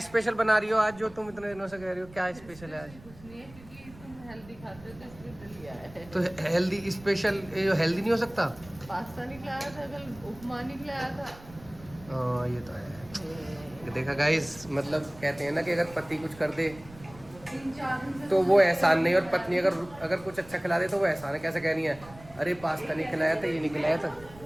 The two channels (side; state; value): right; noise; rumble, 20 dB below the sound